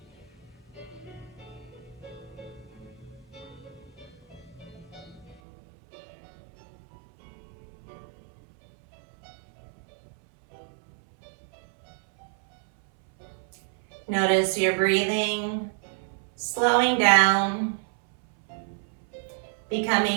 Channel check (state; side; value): drops out; left; at 5.4 s